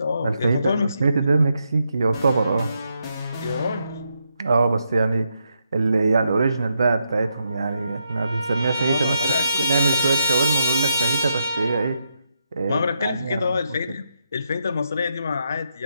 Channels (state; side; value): inverted; both; correlation -0.81